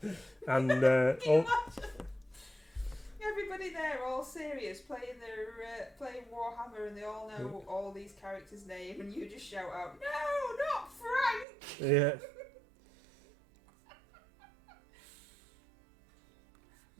And Can you imagine? Everybody there, all serious, playing Warhammer, and they all know all these characters' name, and you just shout out, "No, not Frank!" yeah.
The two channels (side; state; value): left; drops out; at 11.5 s